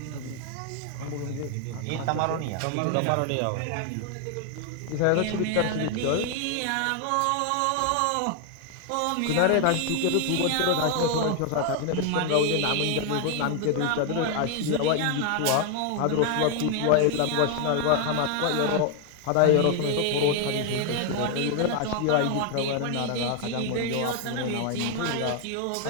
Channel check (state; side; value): different; both; correlation 0.00